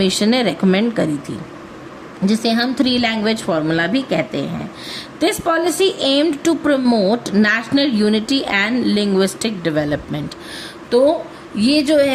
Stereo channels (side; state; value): both; identical; correlation 1.00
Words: ने रेकमेंड करी थी जिसे हम 3 लैंग्वेज फार्मूला भी कहते हैं. This policy aimed to promote national unity and linguistic development. तो ये जो